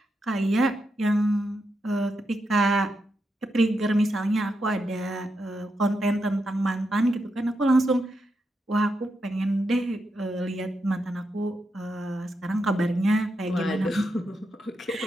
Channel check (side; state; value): both; normal; correlation 0.84